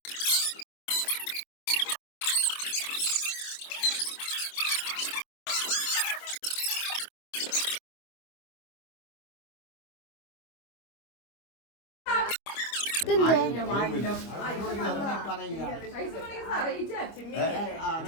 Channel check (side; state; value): right; late; 25 ms